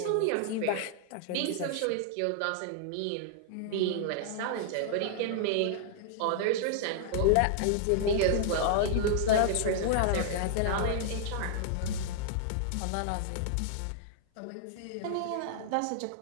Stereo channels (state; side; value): different; both; correlation -0.01